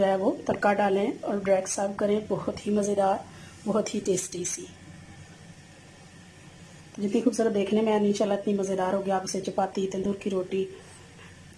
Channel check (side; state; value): both; identical; correlation 1.00